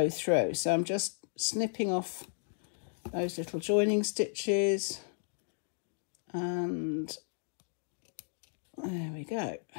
through. So I'm just snipping off those little joining stitches, and there we go.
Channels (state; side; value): silent; right; digital silence